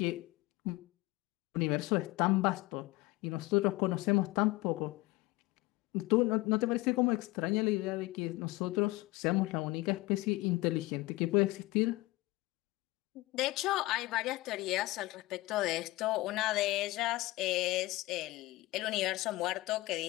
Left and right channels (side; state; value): right; quieter; 20.4 dB